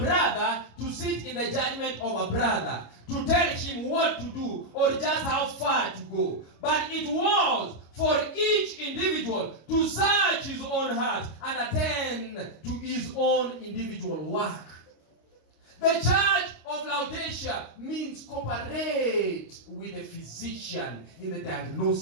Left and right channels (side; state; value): right; late; 25 ms